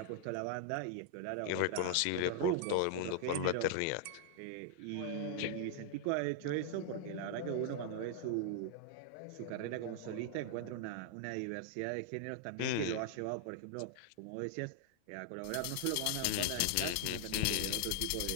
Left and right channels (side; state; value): both; different; correlation 0.00